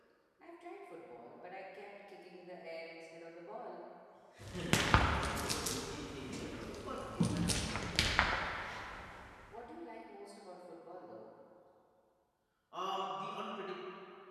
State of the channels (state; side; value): identical; both; correlation 1.00